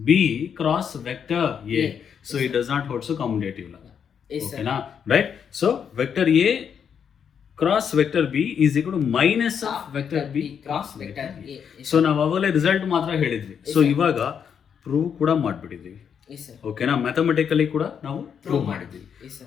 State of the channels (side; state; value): right; quieter; 7.5 dB